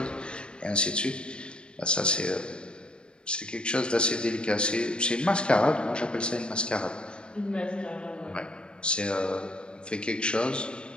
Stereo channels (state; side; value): late; right; 0.054 ms